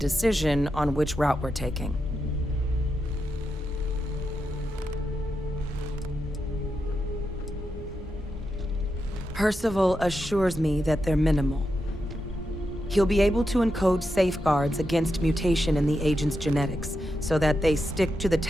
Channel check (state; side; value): normal; both; correlation 0.86